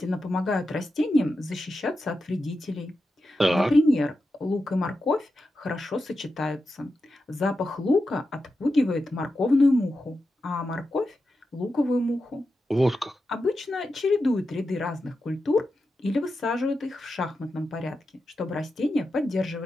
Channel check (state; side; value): normal; both; correlation 0.90